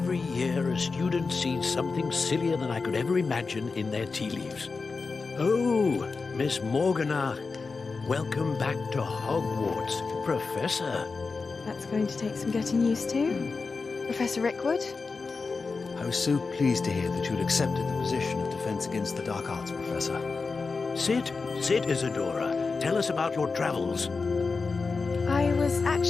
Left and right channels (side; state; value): right; quieter; 4.4 dB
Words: year, a student sees something sillier than I could ever imagine in their tea leaves. Oh, Miss Morgana, welcome back to Hogwarts, Professor. That's going to take some getting used to. Professor Rickwood? I was so pleased to hear that you had accepted the position of Defense Against the Dark Arts, Professor. Sit, Isadora. Tell us about your travels. I was